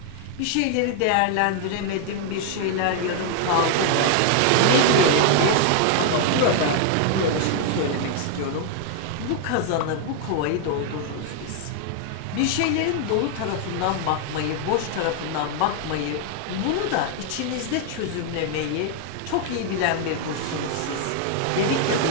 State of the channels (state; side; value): different; both; correlation 0.00